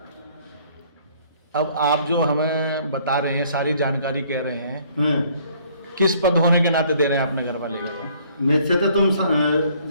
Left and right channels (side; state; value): both; inverted; correlation -0.60